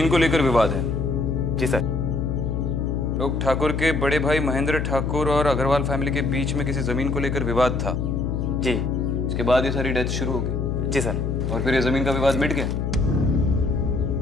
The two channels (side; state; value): left; noise; hum, 1 dB below the sound